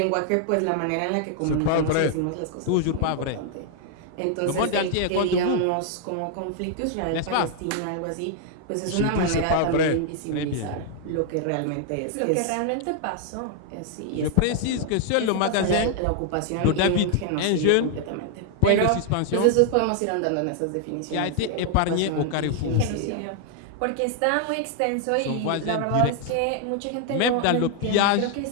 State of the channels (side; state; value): both; different; correlation 0.00